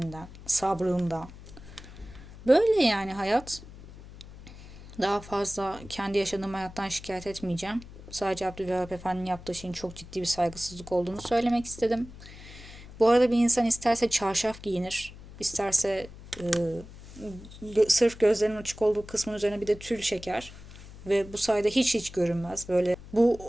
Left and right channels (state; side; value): noise; left; hum, 17 dB below the sound